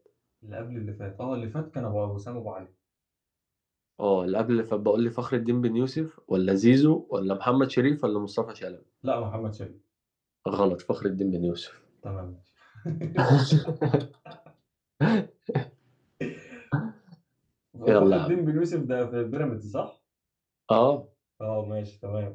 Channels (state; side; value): identical; both; correlation 1.00